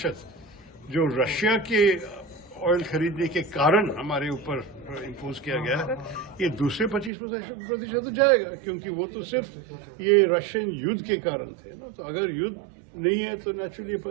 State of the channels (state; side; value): drops out; left; at 7.1 s